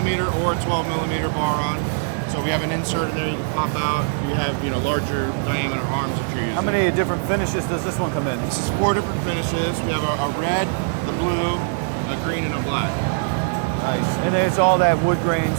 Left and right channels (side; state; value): left; silent; digital silence